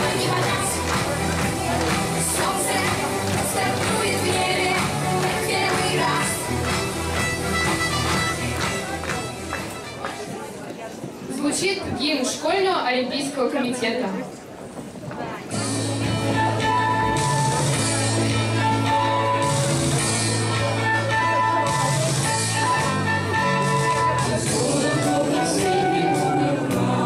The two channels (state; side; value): identical; both; correlation 1.00